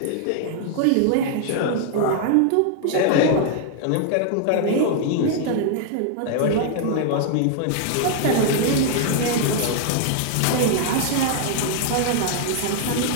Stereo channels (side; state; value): both; different; correlation 0.00